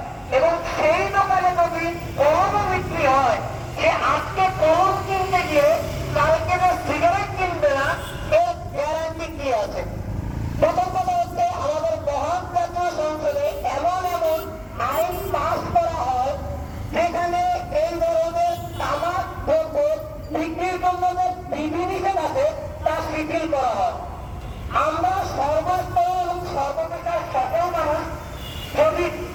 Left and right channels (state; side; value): identical; both; correlation 1.00